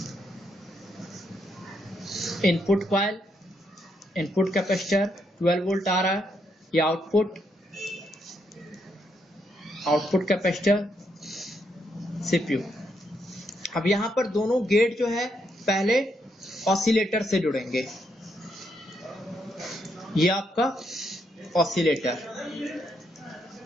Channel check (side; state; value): both; normal; correlation 0.77